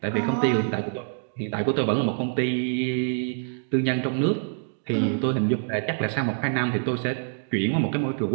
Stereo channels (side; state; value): left; silent; digital silence